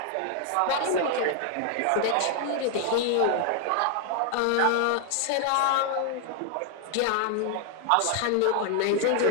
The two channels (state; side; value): different; both; correlation 0.00